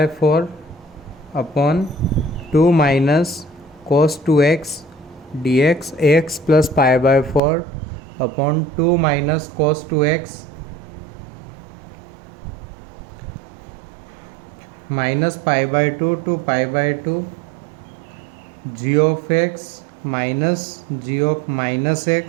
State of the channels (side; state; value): left; drops out; at 7.4 s